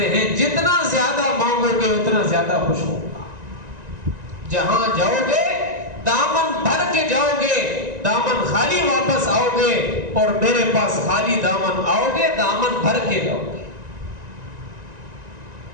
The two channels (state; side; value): late; left; 1.9 ms